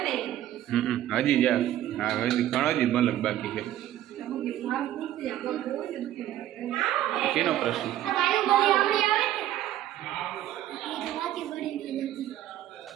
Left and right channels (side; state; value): left; quieter; 12.9 dB